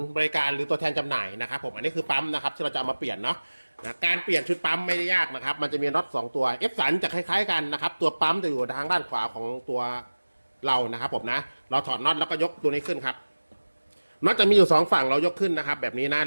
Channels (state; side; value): inverted; both; correlation -1.00